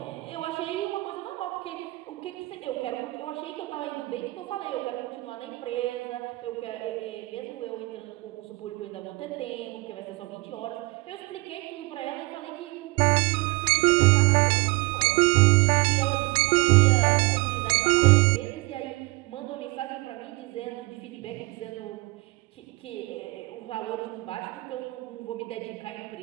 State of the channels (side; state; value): left; quieter; 23.9 dB